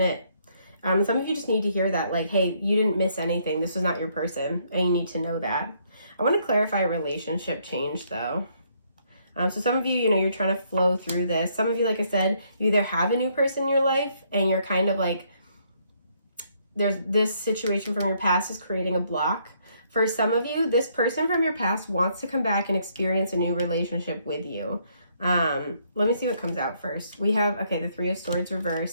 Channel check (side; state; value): both; inverted; correlation -0.70